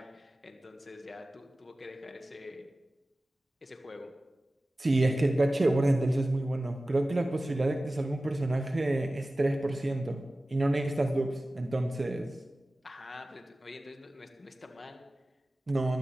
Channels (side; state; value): both; normal; correlation 0.96